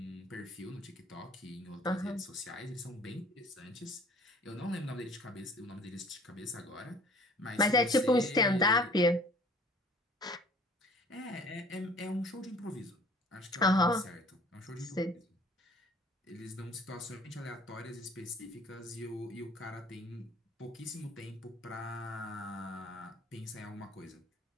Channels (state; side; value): normal; both; correlation 0.51